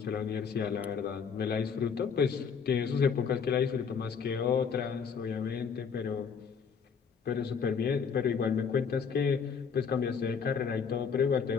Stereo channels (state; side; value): quieter; right; 6.3 dB